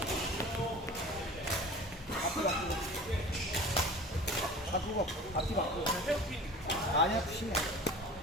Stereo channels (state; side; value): normal; both; correlation 0.40